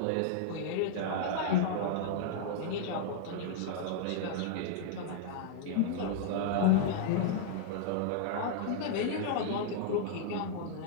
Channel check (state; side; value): different; both; correlation -0.01